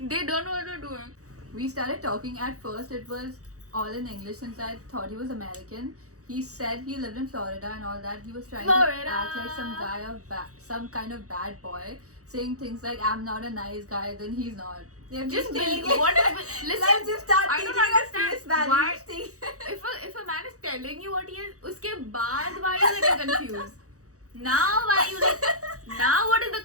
don't know what they're doing. We started talking. At first, it was all in English since I thought he was American. He said he lived in Florida and all that. He was trying Florida. to act like some kind of bad boy, saying things like "I'm not a nice guy," then he's not. They're Just taking be, it- what is, listen, Let's just start I taking don't our understand face value. why- Just take- if a man is telling you what he is, uske baad why are you getting confused? Now why you like? Now what is the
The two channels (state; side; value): late; left; 0.66 ms